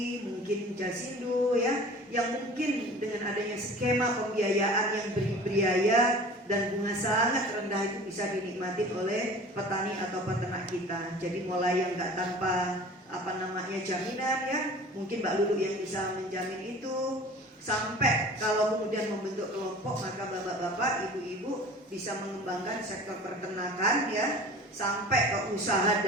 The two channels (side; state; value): both; normal; correlation 0.42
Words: mungkin Jasindo ya, yang mungkin dengan adanya skema pembiayaan yang berbiaya dan bunga sangat rendah itu bisa dinikmati oleh petani atau peternak kita. Jadi mulai yang nggak tanpa jaminan ya, mungkin Mbak Lulu yang bisa menjamin itu, sampai kalau kemudian membentuk kelompok maka bapak-bapak, ibu-ibu bisa mengembangkan sektor peternakan ya, sampai ke usaha